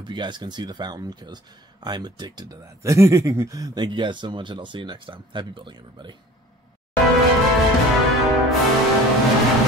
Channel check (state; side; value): normal; both; correlation 0.45